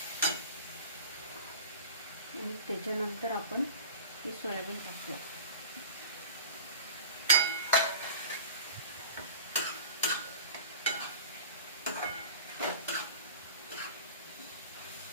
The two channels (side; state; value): both; inverted; correlation -0.37